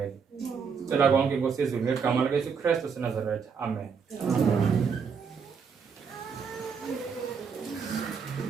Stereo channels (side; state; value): left; quieter; 6.1 dB